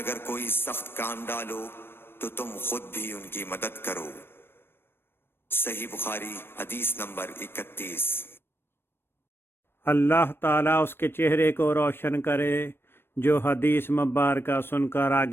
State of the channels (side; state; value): right; late; 0.11 ms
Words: کوئی سخت کام ڈالو تو تم خود بھی ان کی مدد کرو۔ صحیح بخاری حدیث نمبر 31۔ اللہ تعالیٰ اس کے چہرے کو روشن کرے جو حدیث مبارکہ سن کر